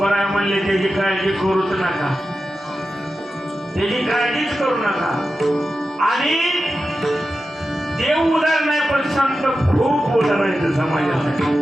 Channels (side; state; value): both; normal; correlation 0.92